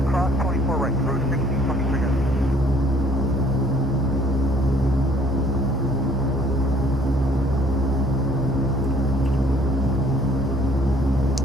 cross 24 right, route 1623 guys.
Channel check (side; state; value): both; normal; correlation 0.58